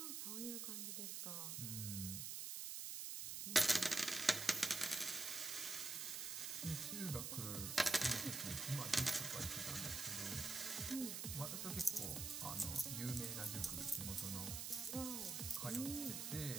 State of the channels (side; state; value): right; noise; hiss, 3 dB below the sound